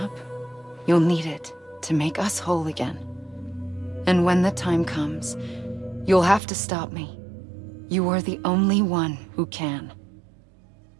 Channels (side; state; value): left; drops out; at 6.4 s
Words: you'll need it to make us whole again. And when the time comes, you'll have to stop me. You are the only one who can.